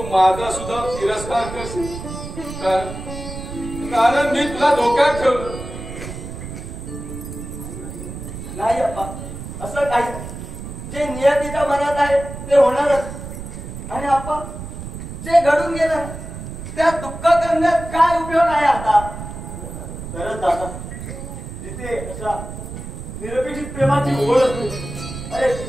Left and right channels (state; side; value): noise; right; rumble, 9 dB below the sound